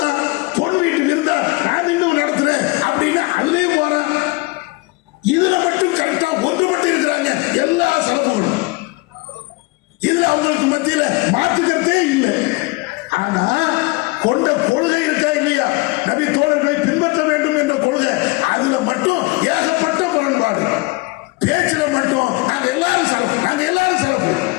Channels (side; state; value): right; quieter; 24.5 dB